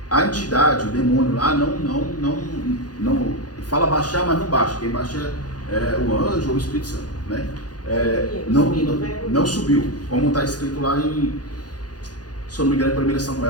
A entidade, o demônio lá, não fala baixar, mas não baixa. Quem baixa é o anjo ou o Espírito Santo, né? Não subiu, como está escrito lá em, se eu não me engano, em 1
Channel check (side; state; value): right; late; 0.69 ms